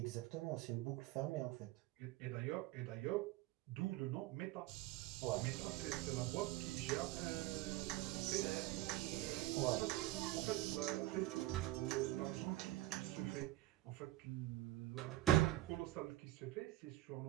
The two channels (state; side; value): quieter; left; 16.5 dB